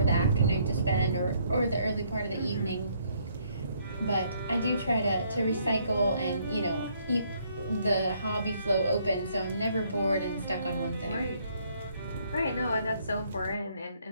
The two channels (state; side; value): inverted; both; correlation -0.68